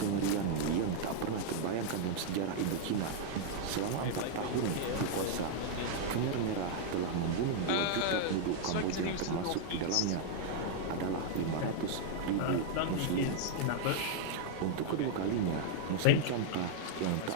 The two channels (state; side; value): different; both; correlation -0.01